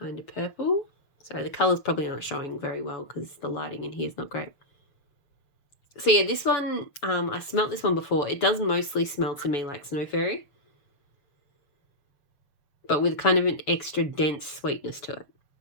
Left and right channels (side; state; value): right; late; 6.7 ms